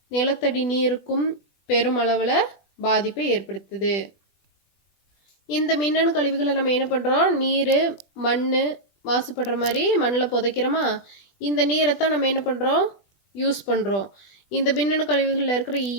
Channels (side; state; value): right; late; 21 ms